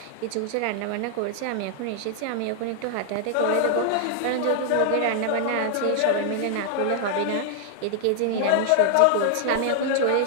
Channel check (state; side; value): different; both; correlation 0.00